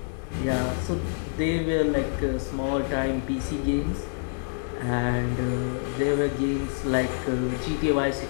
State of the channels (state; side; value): silent; right; digital silence